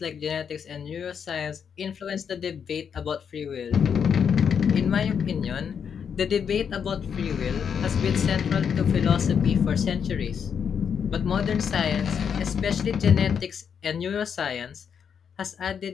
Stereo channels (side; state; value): right; quieter; 7.2 dB